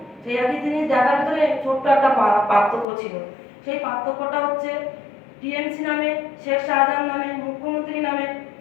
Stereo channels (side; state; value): right; drops out; at 2.9 s